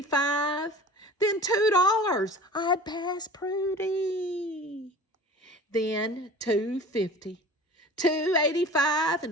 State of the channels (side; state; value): both; normal; correlation 0.40